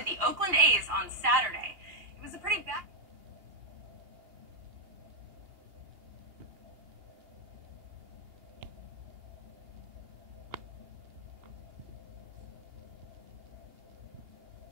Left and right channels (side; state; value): left; late; 2.8 ms